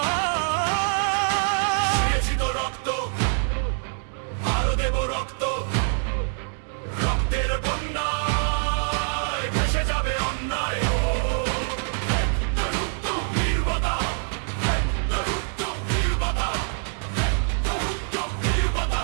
দিয়েছি তো রক্ত, আরো দেব রক্ত। রক্তের বন্যায় ভেসে যাবে অন্যায়। নির্বতা, নির্বতা,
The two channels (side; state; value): left; silent; 62 dB below the other